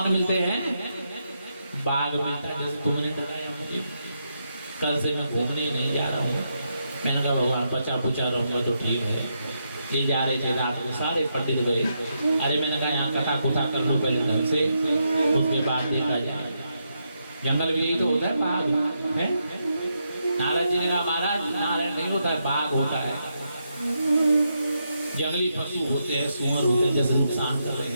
मिलते हैं? बाघ मिलता है। जैसे तुमने बताया मुझे, कल से मैं घूमने नहीं जा रहा हूँ। मैंने कहा भगवान बचा बुचा रहूंगा तो ठीक है। ये जा रहे थे रात को, सारे पंडित गए। अरे मैंने कहा यहाँ कथा कुथा कर लो पहले ढंग से, उसके बाद देखा जाए। जंगल में यही तो होता है, बाघ है। नारद जी ने कहा महाराज नारायण नहीं होता है, बाघ होता है। जंगली पशु होते हैं, सुअर होते हैं, जैसे नुकसान कर रहे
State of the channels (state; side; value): inverted; both; correlation -0.82